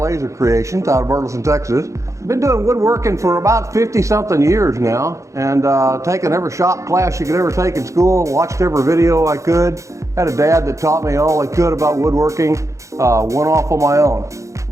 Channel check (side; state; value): left; late; 0.15 ms